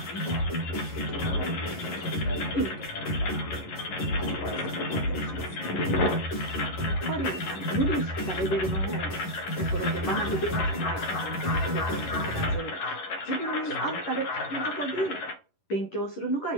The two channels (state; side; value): late; right; 11 ms